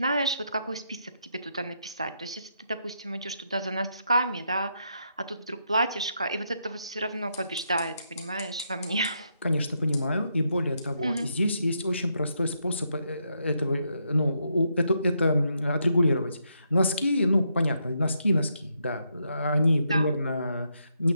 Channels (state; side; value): inverted; both; correlation -0.79